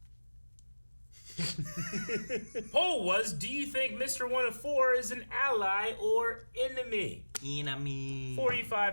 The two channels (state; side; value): inverted; both; correlation -1.00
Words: Poll was, do you think Mr. 104 is an ally or enemy? Enemy.